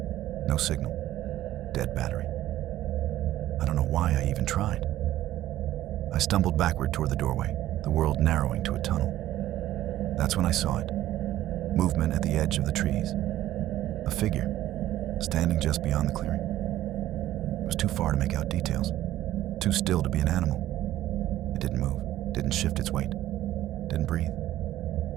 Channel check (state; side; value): quieter; left; 13.9 dB